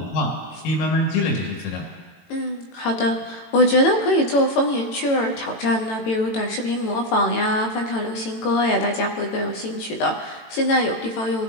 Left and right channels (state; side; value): late; right; 18 ms